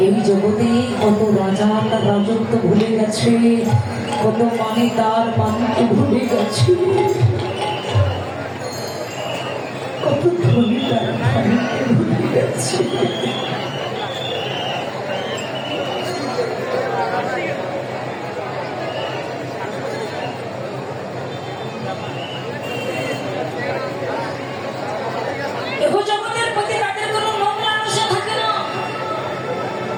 এই জগতে কত রাজা তার রাজত্ব ভুলে গেছে, কত মানে তার মানকে ভুলে গেছে, কত ধনী তার ধনীকে ভুলে গেছে।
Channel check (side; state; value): both; identical; correlation 1.00